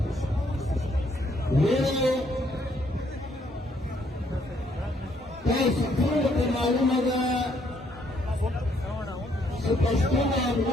ویلو تاسو ټولو ته معلومه ده چې پښتون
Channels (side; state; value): both; normal; correlation 0.70